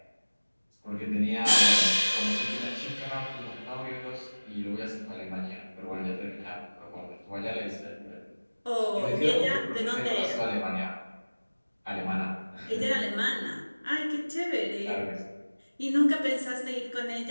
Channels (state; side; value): inverted; both; correlation -1.00